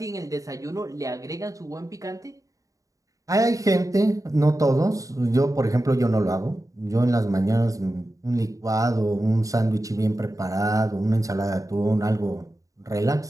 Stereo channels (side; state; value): left; late; 0.16 ms